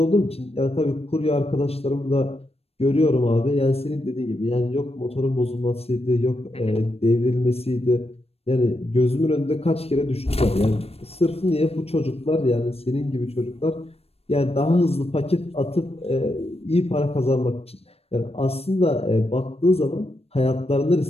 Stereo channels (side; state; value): right; late; 0.29 ms